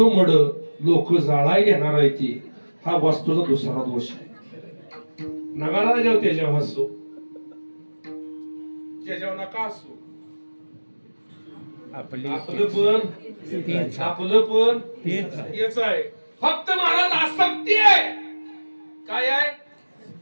मड लोक जाळाय येणार आहे ती, हा वास्तूचा दुसरा दोष आहे. नगाला जेव्हा त्याच्यावर हसू, त्याच्यावर नका हसू. आपलं पण हेच आहे. फक्त महाराज आसक्ती आहे. काय आहे?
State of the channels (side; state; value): both; inverted; correlation -1.00